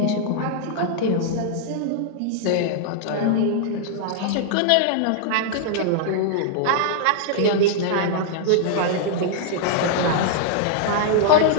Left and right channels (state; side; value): different; both; correlation -0.01